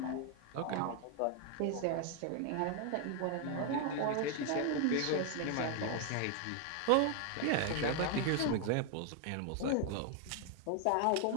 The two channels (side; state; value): both; different; correlation 0.00